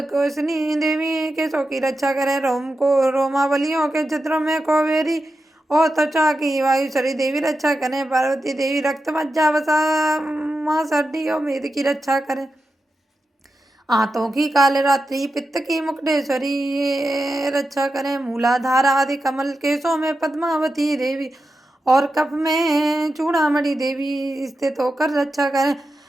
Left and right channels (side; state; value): both; normal; correlation 0.90